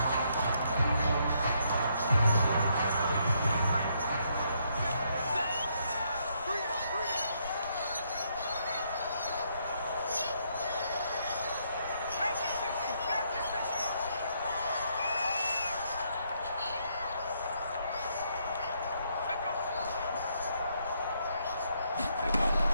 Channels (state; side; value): inverted; both; correlation -0.74